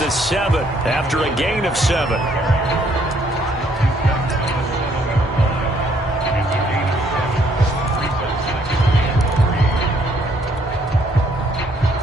7 after a gain of 7.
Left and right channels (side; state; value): both; normal; correlation 0.67